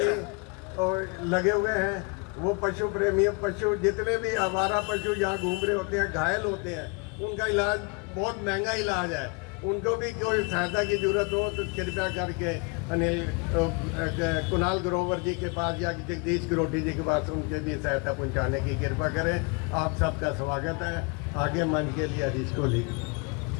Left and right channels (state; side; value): quieter; right; 31.6 dB